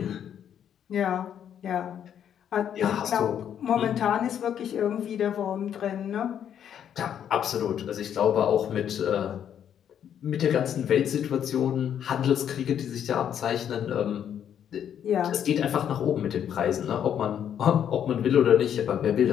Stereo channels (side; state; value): right; quieter; 9.2 dB